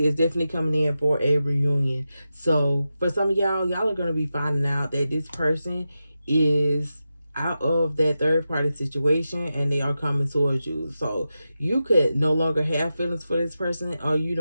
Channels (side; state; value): both; inverted; correlation -0.91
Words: is definitely coming in for a reunion. So for some of y'all, y'all are going to be finding out that this person is out of that third party situation and they are coming towards you. So you could no longer have feelings for this person, or